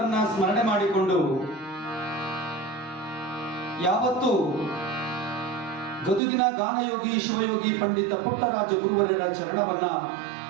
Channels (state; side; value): drops out; left; at 6.2 s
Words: ಸ್ಮರಣೆ ಮಾಡಿಕೊಂಡು ಯಾವತ್ತು ಗದುಗಿನ ಗಾನಯೋಗಿ ಶಿವಯೋಗಿ ಪಂಡಿತ ಪುಟ್ಟರಾಜ ಗುರುವರ್ಯರ ಚರಣವನ್ನ